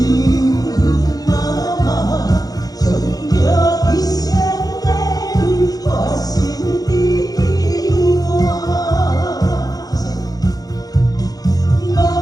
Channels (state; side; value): late; right; 0.18 ms